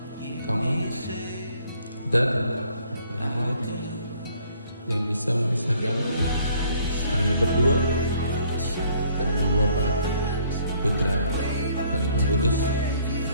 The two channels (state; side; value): inverted; both; correlation -0.62